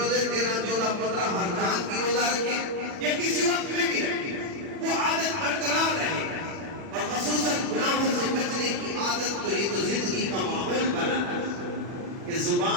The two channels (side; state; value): left; late; 40 ms